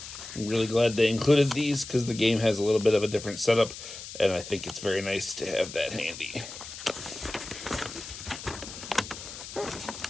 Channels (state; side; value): noise; left; hiss, 12 dB below the sound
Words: I'm really glad they included these because the game has a little bit of a different setup, and I think it's very nice to have that handy.